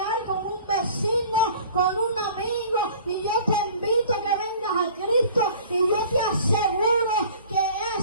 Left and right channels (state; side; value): inverted; both; correlation -0.47